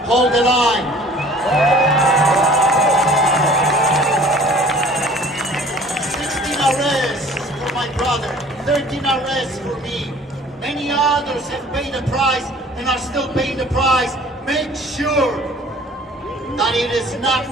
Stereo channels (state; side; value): normal; both; correlation 0.50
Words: Hold the line. 16 arrests for my brother. 13 arrests for me. Many others have paid the price and are still paying the price. Make sure that it is not